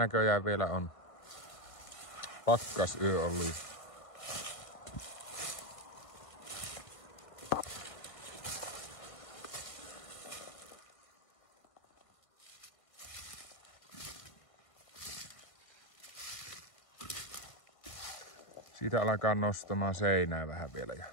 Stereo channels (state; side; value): late; right; 1.5 ms